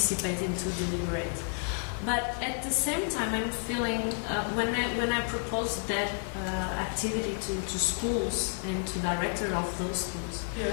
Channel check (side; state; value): right; silent; 57 dB below the other